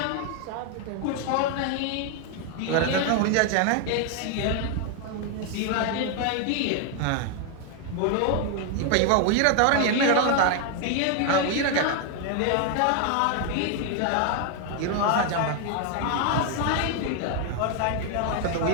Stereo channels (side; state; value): both; different; correlation 0.00